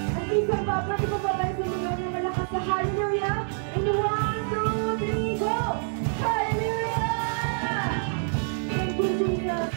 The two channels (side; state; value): left; silent; digital silence